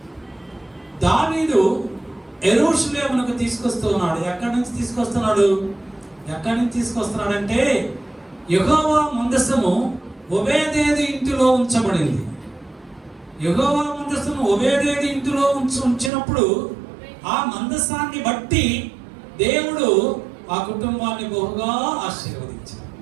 దావీదు యెరూషలేమునకు తీసుకొస్తున్నాడు. ఎక్కడి నుంచి తీసుకొస్తున్నాడంటే యెహోవా మందసము ఓబేదేదు ఇంటిలో ఉంచబడింది. యెహోవా మందసము ఓబేదేదు ఇంటిలో ఉంచినప్పుడు ఆ మందసాన్ని బట్టి దేవుడు ఆ కుటుంబాన్ని బహుగా ఆశీర్వదించాడు.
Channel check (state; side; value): drops out; left; at 16.1 s